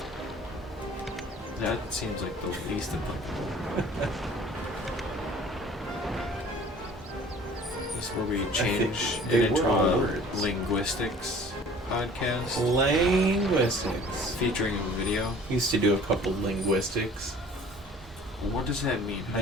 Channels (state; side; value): normal; both; correlation 0.49